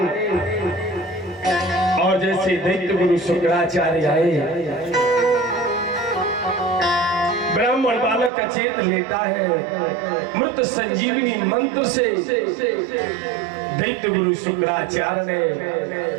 और जैसे दैत्य गुरु शुक्राचार्य आए, ब्राह्मण बालक अचेत लेता है। मृत संजीवनी मंत्र से दैत्य गुरु शुक्राचार्य ने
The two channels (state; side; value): drops out; left; at 8.3 s